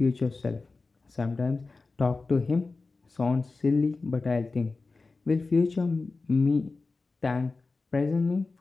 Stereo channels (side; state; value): right; quieter; 3.8 dB